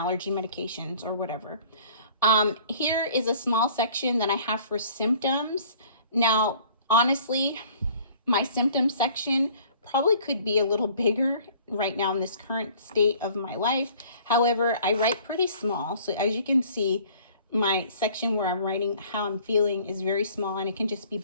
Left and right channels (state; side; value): inverted; both; correlation -0.53